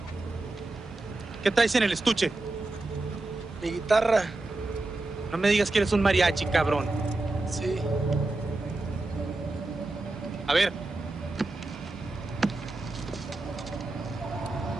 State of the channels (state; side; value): quieter; left; 3.0 dB